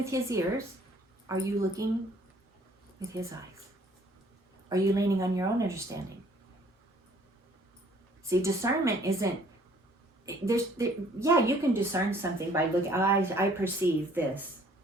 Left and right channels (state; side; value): normal; both; correlation 0.59